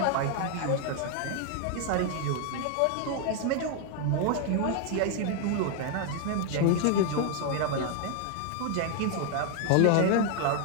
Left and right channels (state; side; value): different; both; correlation 0.00